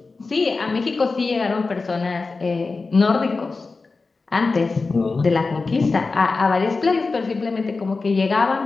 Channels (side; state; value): right; quieter; 4.0 dB